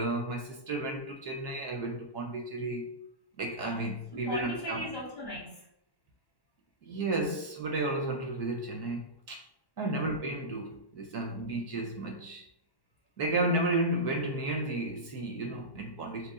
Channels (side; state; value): right; late; 1.1 ms